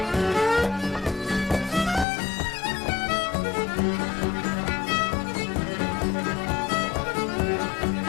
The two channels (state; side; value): drops out; right; at 2.1 s